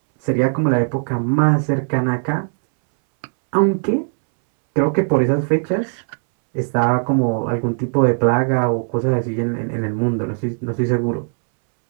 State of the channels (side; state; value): left; silent; 67 dB below the other